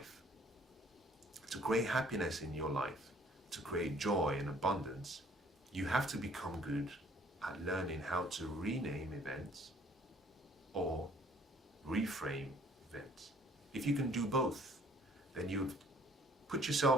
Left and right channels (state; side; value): normal; both; correlation 0.59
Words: to create happiness in your life, to create joy and abundance, you have to become good at learning how to rename events or reframe events. If you can do both, then you've put